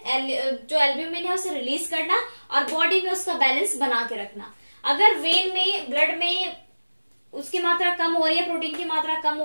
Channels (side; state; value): both; inverted; correlation -1.00